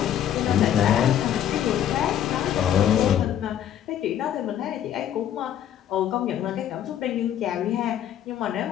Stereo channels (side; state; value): right; quieter; 10.5 dB